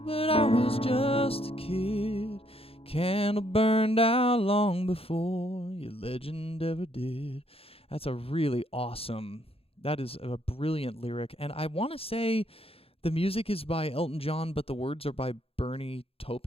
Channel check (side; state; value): right; late; 0.28 ms